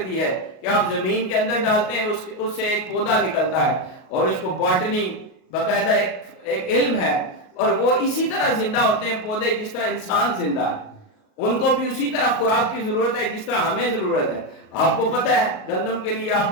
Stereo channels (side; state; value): right; late; 38 ms